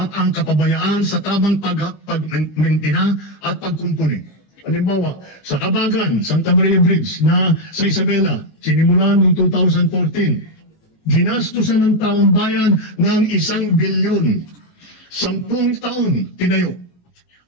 ang kapabayaan sa tamang pagmentina at pagkumpuni. Halimbawa, sa Kabagan, Santa Maria Bridge na sa Isabela, sinimulan noong 2014, ginastusan ng taong bayan ng 1 bilyon. 10 taon tinayo.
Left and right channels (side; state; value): right; late; 18 ms